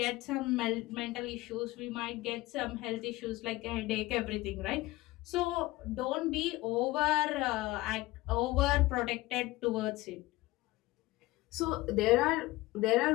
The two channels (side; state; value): right; quieter; 19.3 dB